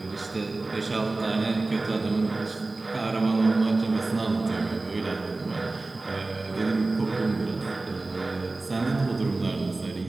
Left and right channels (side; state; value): left; quieter; 3.3 dB